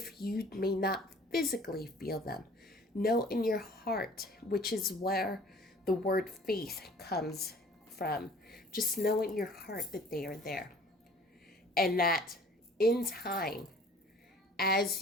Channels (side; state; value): both; normal; correlation 0.51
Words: you may not physically feel them, know in your heart, which is where the word faith comes from. Just know in your heart that they are there. And that in time, as